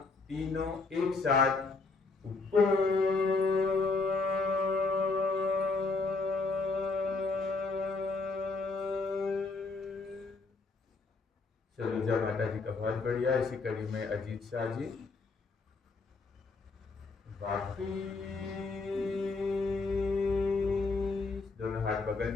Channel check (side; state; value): right; quieter; 3.9 dB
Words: तीनों एक साथ ऊपर। सलूजा माता जी का बहुत बढ़िया। इसी कड़ी में अजीत शाह जी। दोनों हाथ बगल